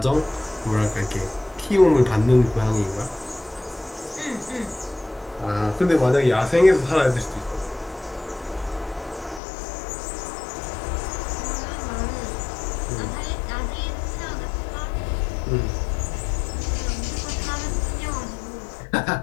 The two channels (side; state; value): right; drops out; at 9.4 s